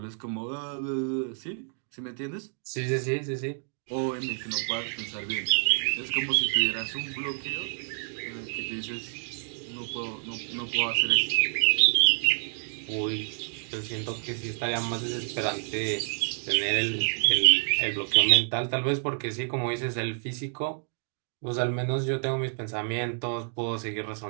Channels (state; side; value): silent; left; 57 dB below the other